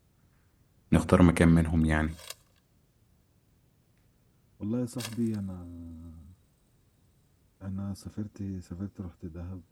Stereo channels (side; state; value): both; identical; correlation 1.00